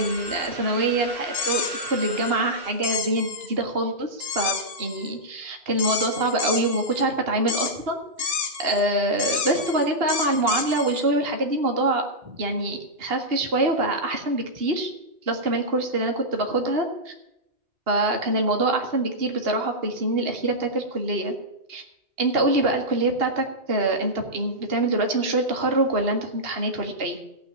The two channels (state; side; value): late; left; 2.8 ms